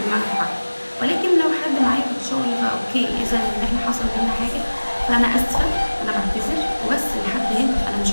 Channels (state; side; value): inverted; both; correlation -1.00